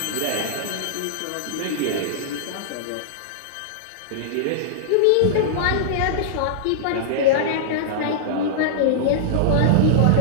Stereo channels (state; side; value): different; both; correlation -0.02